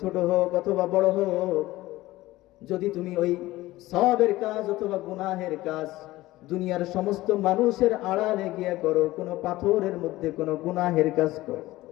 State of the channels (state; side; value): quieter; right; 17.6 dB